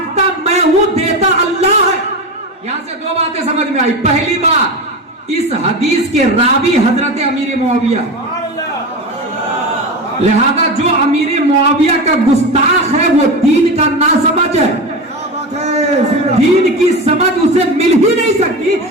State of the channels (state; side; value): normal; both; correlation 0.23